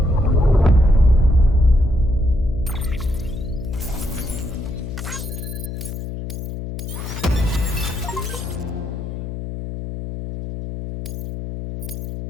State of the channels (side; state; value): left; noise; hum, 7 dB below the sound